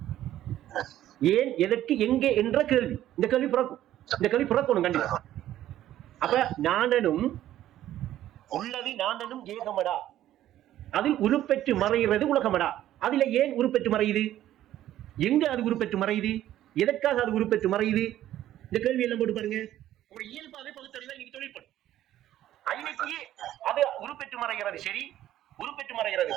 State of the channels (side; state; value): left; quieter; 12.9 dB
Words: ஏன், எதற்கு, எங்கே என்ற கேள்வி, இந்த கேள்வி பிறக்கும். இந்த கேள்வி பிறக்கணும் கண்டிப்பா. அப்ப நானனும் உள்ளது நானனும் ஏகமடா, அதில் உருப்பெற்று மறைகிறது உலகமடா. அதுல ஏன் உருப்பெற்று மறையுது? எங்க அது உருப்பெற்று மறையுது? எதற்காக அது உருப்பெற்று மறையுது? இந்த கேள்வி எல்லாம் போட்டு பாருங்க. ஒரு இயல்பாவே பகுத்தறிவு இன்னைக்கு தொழில்படும். அன்னைக்கு அது உருப்பெற்று மறைகிறது சரி, உருப்பெற்று மறைகிறது